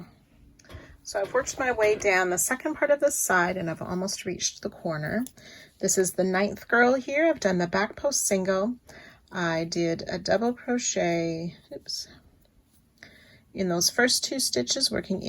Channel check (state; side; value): identical; both; correlation 1.00